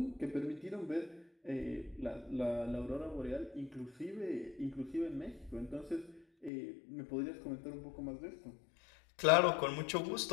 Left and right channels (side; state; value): right; drops out; at 6.5 s